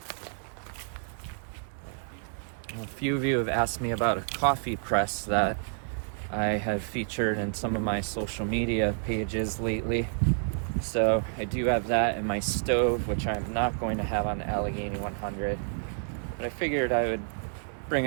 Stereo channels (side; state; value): left; silent; digital silence